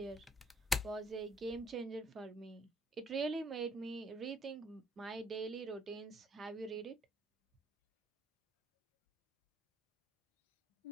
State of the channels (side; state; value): both; normal; correlation 0.68